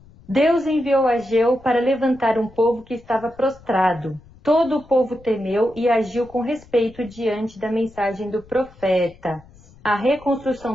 Deus enviou Ageu para levantar um povo que estava prostrado. Todo o povo temeu e agiu com respeito diante da mensagem do profeta. A reconstrução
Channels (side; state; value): left; noise; rumble, 25 dB below the sound